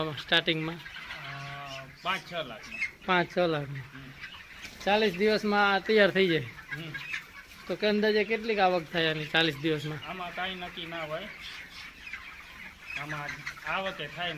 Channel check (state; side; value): identical; both; correlation 1.00